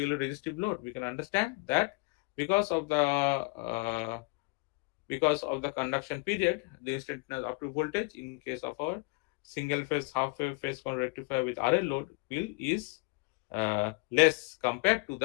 resistive load, we can understand that because of the conduction period, the instantaneous output voltage in case of our single phase half wave phase rectifier with RL load is less compared to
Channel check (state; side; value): quieter; right; 28.2 dB